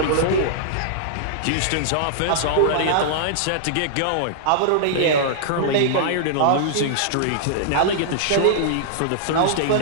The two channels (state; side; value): different; both; correlation -0.01